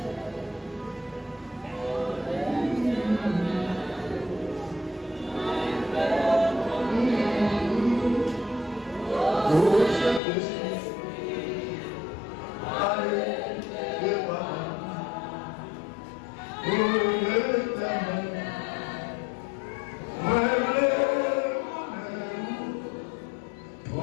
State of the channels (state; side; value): drops out; right; at 10.2 s